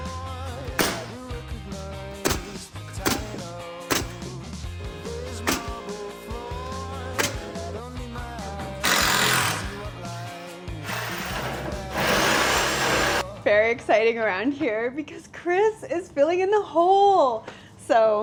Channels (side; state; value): both; identical; correlation 1.00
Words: Very exciting around here because Chris is filling in the hole.